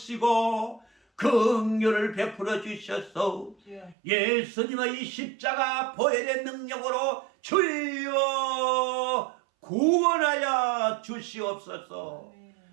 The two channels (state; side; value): drops out; left; at 4.0 s